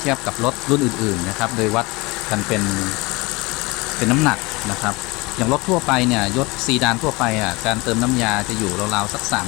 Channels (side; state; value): right; quieter; 24.5 dB